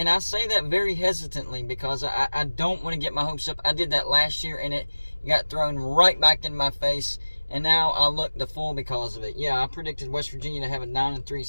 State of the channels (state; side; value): inverted; both; correlation -1.00